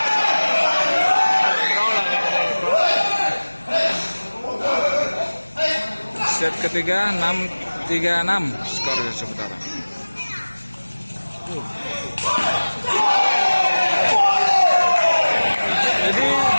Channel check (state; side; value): inverted; both; correlation -1.00